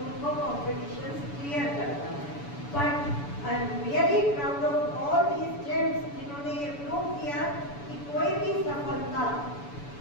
उनको कॉम्पिटिशन क्लियर करना है. But I am really proud of all these gems जिन्होंने ये प्रूव किया कि कोई भी सफलता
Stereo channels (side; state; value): right; late; 7.0 ms